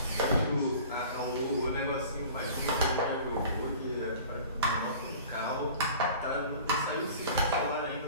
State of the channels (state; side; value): inverted; both; correlation -0.43